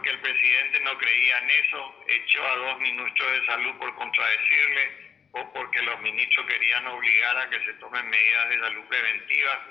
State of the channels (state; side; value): quieter; right; 6.8 dB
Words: el presidente no creía en eso, echó a 2 ministros de salud por contradecirle o porque los ministros querían obligar a que se tomen medidas de salud preventivas,